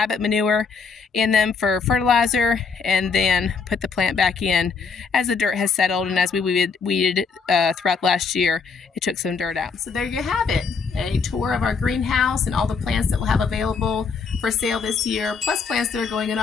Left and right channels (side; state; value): right; quieter; 5.3 dB